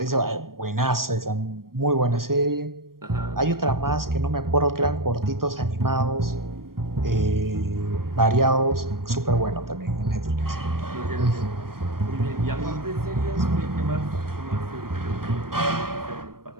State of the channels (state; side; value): late; left; 0.92 ms